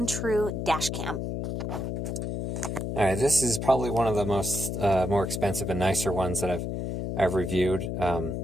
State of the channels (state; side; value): noise; left; hum, 3 dB below the sound